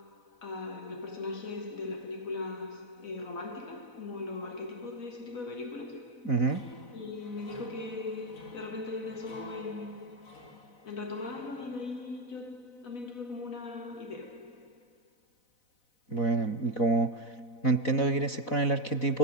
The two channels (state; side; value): late; right; 4.0 ms